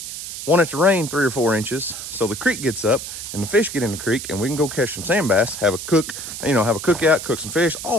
want it to rain 3 or 4 inches so the creek gets up and the fish get in the creek and we can go catch some sand bass, have a cookout, cook some fish,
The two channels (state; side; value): noise; right; hiss, 8 dB below the sound